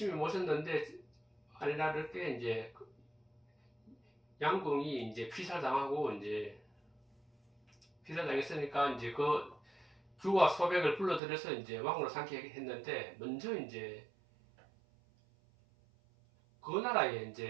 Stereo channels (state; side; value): drops out; left; at 11.2 s